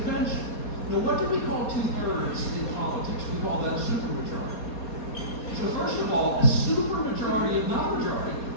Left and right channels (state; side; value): late; right; 4.2 ms